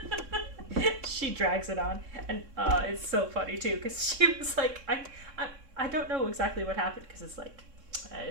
She drags it on, and it's so funny too, because she was like, I don't know exactly what happened, because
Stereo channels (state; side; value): late; left; 3.6 ms